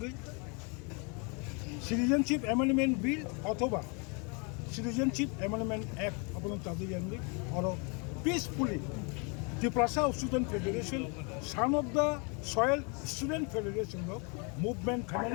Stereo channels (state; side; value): quieter; right; 33.5 dB